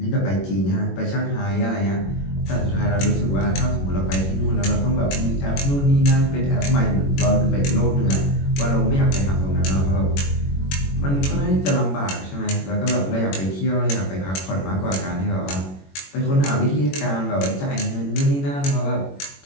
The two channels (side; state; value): right; late; 21 ms